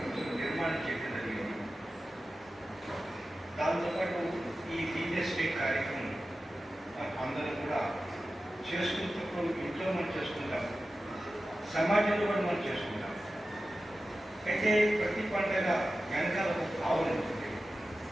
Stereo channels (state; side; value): normal; both; correlation 0.94